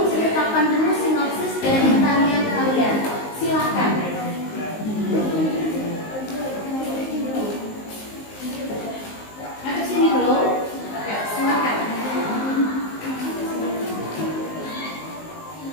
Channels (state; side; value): late; right; 19 ms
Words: dulu sinopsis dari tarian kalian. Silakan. Ada sini dulu. Silakan.